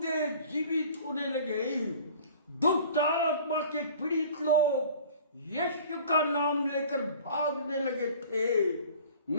जीवित होने लगे। दुष्ट आत्मा के पीड़ित लोग यीशु का नाम लेकर भागने लगे थे।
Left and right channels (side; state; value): both; inverted; correlation -0.46